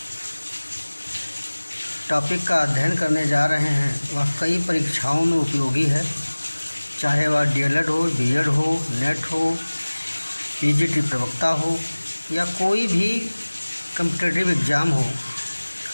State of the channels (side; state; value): both; inverted; correlation -1.00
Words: टॉपिक का अध्ययन करने जा रहे हैं वह कई परीक्षाओं में उपयोगी है, चाहे वह डीएलएड हो, बीएड हो, नेट हो, पीजीटी प्रवक्ता हो या कोई भी कम्पिटिटिव एग्ज़ाम हो।